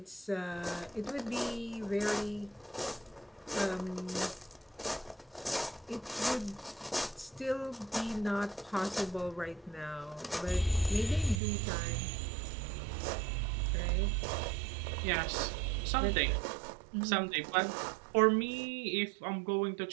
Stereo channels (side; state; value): left; drops out; at 11.4 s